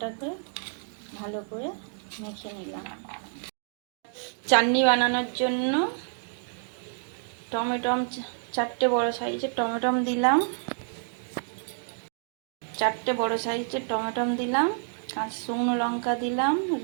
ভালো করে মেখে নিলাম। চাটনি বানানোর জন্য টমেটম 4টে বড় সাইজের টমেটম দিলাম। 4টে বড় সাইজের টমেটম দিলাম, কাঁচা শুকনো লঙ্কা দিলাম,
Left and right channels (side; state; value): left; silent; 59 dB below the other